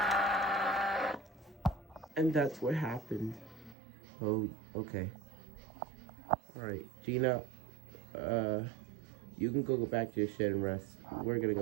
and that's what happened. Oh, okay. Alright, Gina, you can go back to your shed and rest. We're gonna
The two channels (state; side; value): drops out; left; at 3.8 s